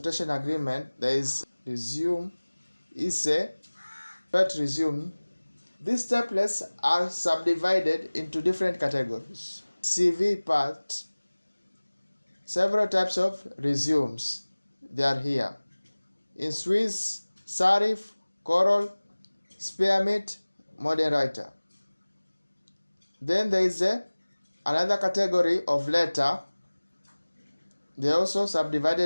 agreement, there is resume, essay, but resume. These templates are subdivided into different categories. CV part, several types of resumes, they are here. In Swiss, serif, choral, spearmint, modern writer. Then there is another category of letter. They are also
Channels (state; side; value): inverted; both; correlation -1.00